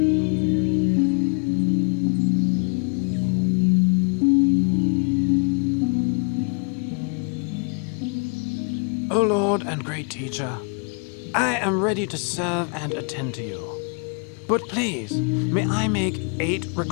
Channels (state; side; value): quieter; right; 38.6 dB